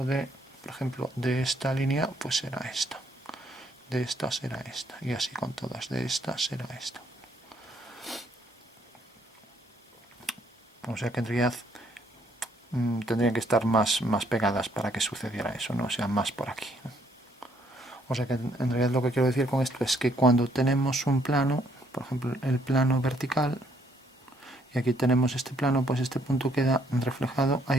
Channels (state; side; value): normal; both; correlation 0.68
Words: de, por ejemplo, de esta línea, pues será esta, de esta será esta, y así con todas, de esta será esta. O sea que en realidad tendrían que estar más pegadas para que sucediera eso, ¿no? O sea, más por aquí, ¿no? O sea que en realidad lo que quiero decir con esto es que cuando tenemos un plano, por ejemplo el plano vertical, y aquí tenemos este plano, pues este punto queda reflejado a